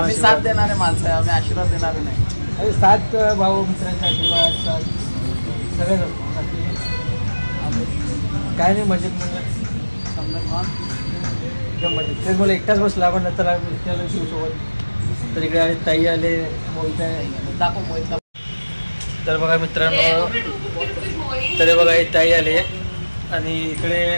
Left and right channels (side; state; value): both; inverted; correlation -1.00